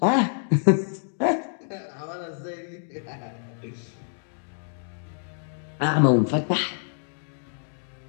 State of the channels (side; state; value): right; silent; digital silence